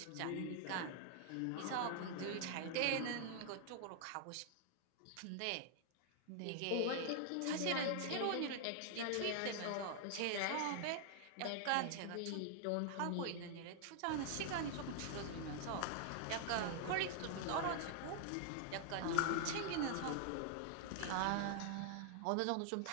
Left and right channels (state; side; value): different; both; correlation 0.00